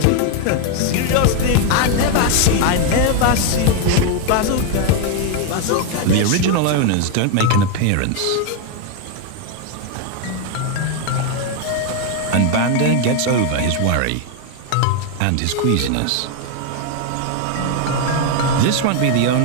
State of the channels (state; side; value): different; both; correlation 0.01